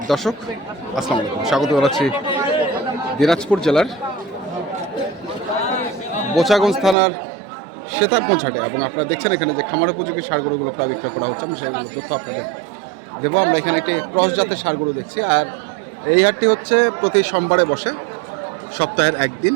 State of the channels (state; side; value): drops out; left; at 7.0 s